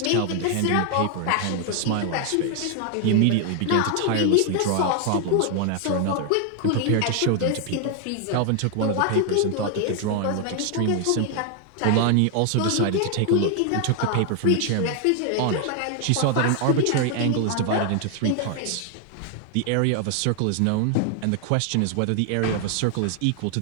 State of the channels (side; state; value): both; different; correlation 0.00